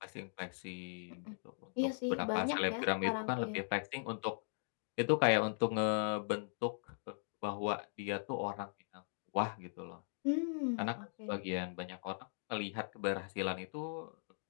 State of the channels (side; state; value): right; silent; digital silence